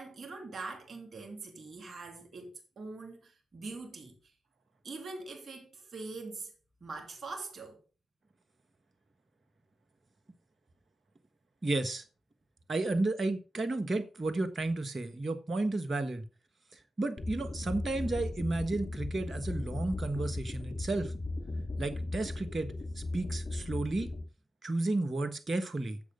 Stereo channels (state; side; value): normal; both; correlation 0.93